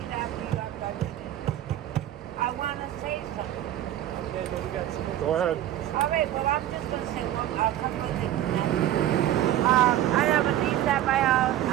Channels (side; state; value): left; quieter; 12.8 dB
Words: that for you after I finish. I want to say something. Go ahead. All right, well, I'm just going to say a couple of things. I have a niece at my house.